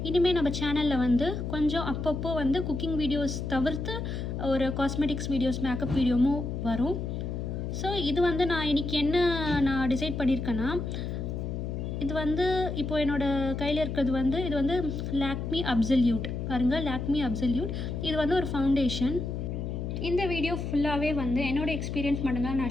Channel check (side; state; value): left; noise; hum, 4 dB below the sound